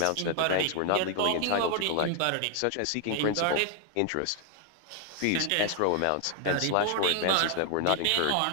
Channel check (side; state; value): both; different; correlation 0.00